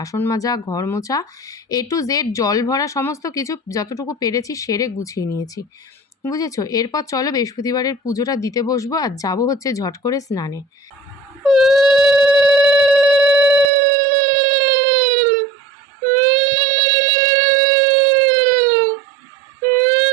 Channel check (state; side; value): drops out; left; at 13.7 s